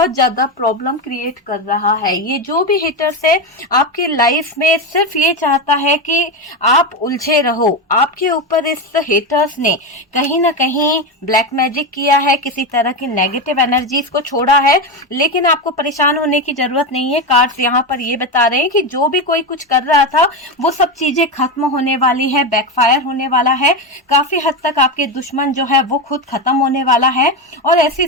ज्यादा प्रॉब्लम क्रिएट कर रहा है। ये जो भी हेटर्स है आपकी लाइफ में सिर्फ ये चाहता है कि आप उलझे रहो। आपके ऊपर इस हेटर्स ने कहीं ना कहीं ब्लैक मैजिक किया है, किसी तरह की नेगेटिव एनर्जीज को छोड़ा है, लेकिन आपको परेशान होने की जरूरत नहीं है। कार्ड्स यहाँ पर ये बता रहे हैं कि जो भी कोई कुछ कर रहा था वो सब चीजें खत्म होने वाली है, बैकफायर होने वाला है। काफी हद तक आपके दुश्मन जो है वो खुद खत्म होने वाला है और ऐसी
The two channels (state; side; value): normal; both; correlation 0.14